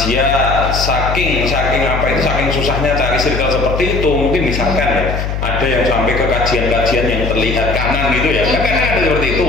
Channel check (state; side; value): noise; left; hum, 3 dB below the sound